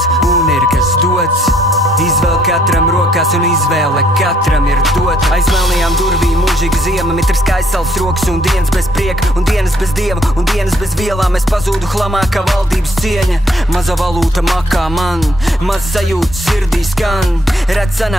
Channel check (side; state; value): both; normal; correlation 0.67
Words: un ir kas dots, izvēl katram rokās un izvēle katram ir dot. Aiz melnajām durvīm mūžīga ziema, mitrs kā aizsals rokas un dienas bez prieka, un dienas bez dieva, un dienas bez vielām. Es pazūdu hlamā kā valdības cieņa, maza valūta makā man, maz sajūta sirdī skan. Redz